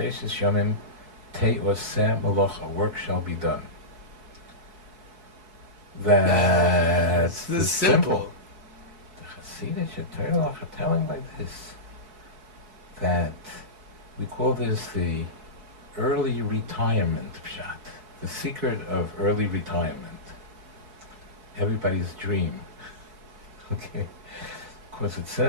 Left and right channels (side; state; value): left; late; 4.7 ms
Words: Yomim Te'oseh Molocha. Work shall be done. That's the simple. The Chassidic Torah are telling like this, that we call this the early retirement pshat, the secret of early retirement. Everybody's dream. Okay? Because it